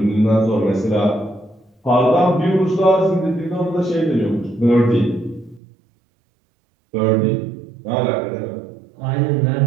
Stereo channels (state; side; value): drops out; left; at 5.6 s